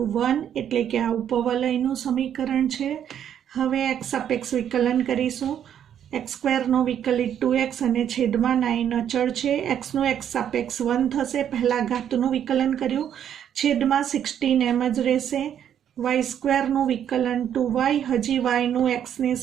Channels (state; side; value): quieter; left; 9.5 dB